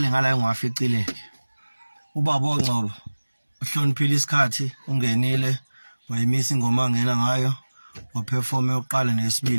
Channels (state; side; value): inverted; both; correlation -1.00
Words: ngala engiwaficile ubaba oNgcobo uhloniphile isikhathi ungenile wayimisa ingoma angena ngayo waperform yokuqala